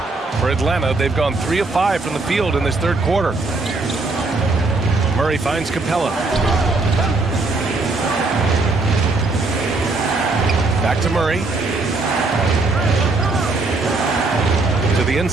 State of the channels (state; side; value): quieter; left; 3.4 dB